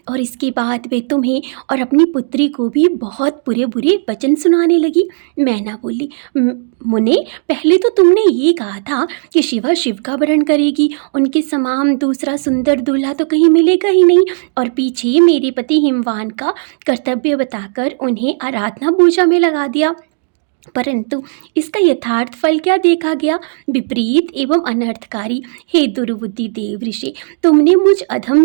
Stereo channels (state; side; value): silent; left; digital silence